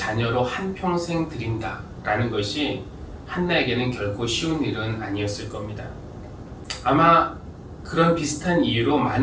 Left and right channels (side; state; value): both; identical; correlation 1.00